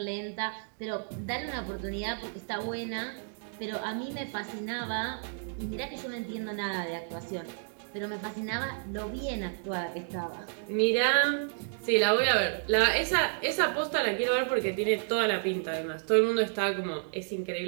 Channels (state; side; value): silent; left; digital silence